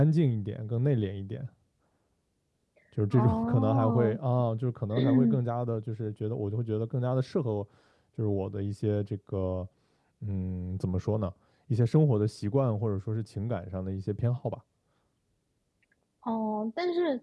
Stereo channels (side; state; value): both; identical; correlation 1.00